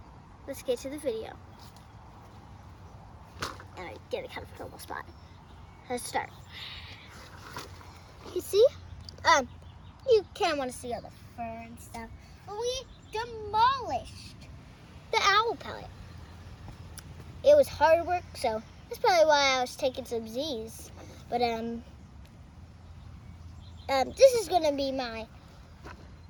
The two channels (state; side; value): identical; both; correlation 1.00